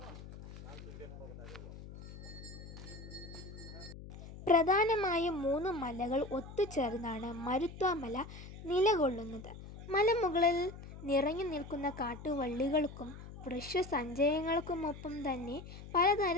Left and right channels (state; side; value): noise; left; hum, 14 dB below the sound